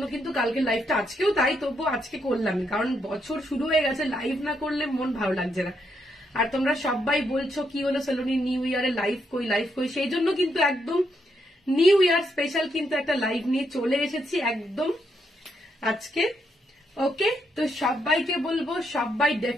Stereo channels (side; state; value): both; normal; correlation 0.78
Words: কিন্তু কালকে লাইভটা আজকেও তাই, তবুও আজকে করলাম, কারণ বছর শুরু হয়ে গেছে, লাইভ না করলে মন ভালো লাগছে না। আর তোমরা সবাই বলছো কি হলো সালোনি নিউ ইয়ারে লাইভ কই, সেই জন্য কিন্তু একদম নিউ ইয়ার স্পেশাল কিন্তু একটা লাইভ নিয়ে চলে এসেছি একদম আজকে। ওকে, তো সবাইকে বলবো সবাই